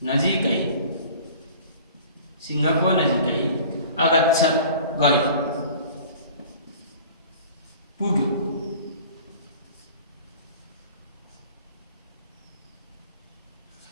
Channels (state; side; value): inverted; both; correlation -0.45